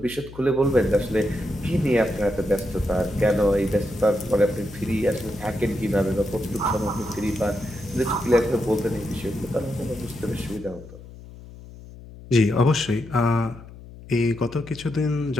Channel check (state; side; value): noise; left; hum, 17 dB below the sound